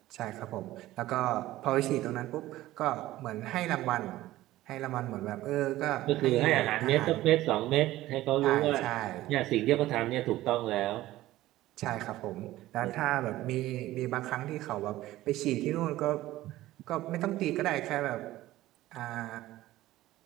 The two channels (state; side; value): quieter; left; 15.9 dB